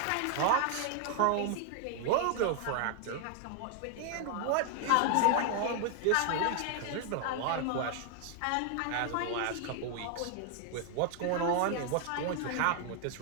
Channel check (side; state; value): both; different; correlation 0.00